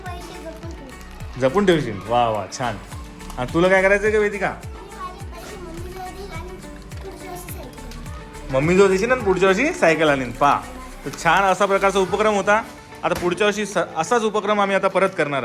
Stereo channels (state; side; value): identical; both; correlation 1.00